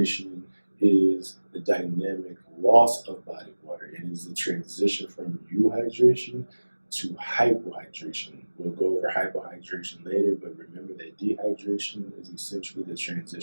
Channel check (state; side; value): inverted; both; correlation -1.00